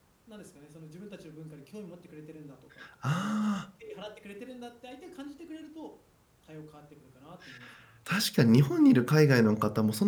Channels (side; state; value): both; identical; correlation 1.00